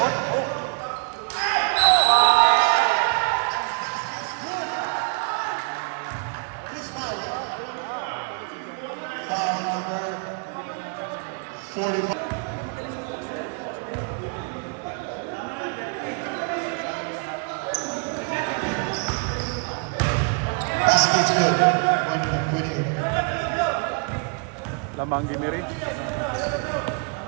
Foul number 45. Basket's good. One winning. Lamang Gimiri.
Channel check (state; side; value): quieter; left; 36.8 dB